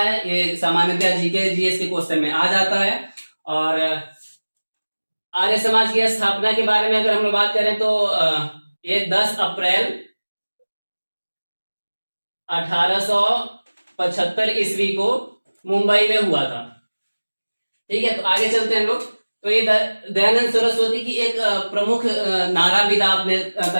ये सामान्यतः जीके जीएस के क्वेश्चन में आ जाता है। और आर्य समाज की स्थापना के बारे में अगर हम लोग बात करें तो ये 10 अप्रैल 1875 ईस्वी को मुंबई में हुआ था। ठीक है, तो आगे चलते हैं हम लोग। तो ये दयानंद सरस्वती की एक प्रमुख नाराविदा अपने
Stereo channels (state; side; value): inverted; both; correlation -1.00